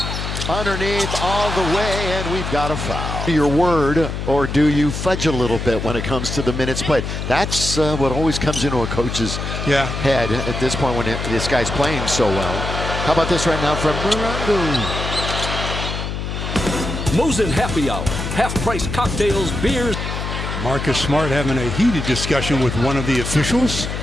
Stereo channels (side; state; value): left; noise; hum, 4 dB below the sound